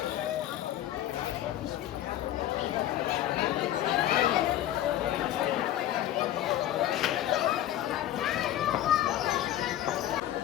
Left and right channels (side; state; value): right; quieter; 12.7 dB